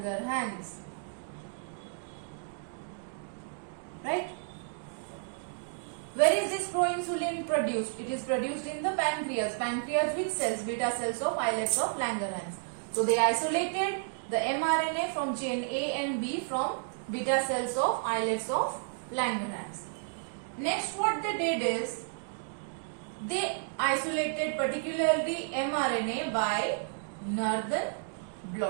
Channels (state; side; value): silent; left; digital silence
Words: Right? Where is this proinsulin produced? It is produced in the pancreas. Pancreas which cells? Beta cells of islets of Langerhans. So they isolated the mRNA from chain A and B from beta cells of islets of Langerhans. Next what they did is, they isolated particularly mRNA by Northern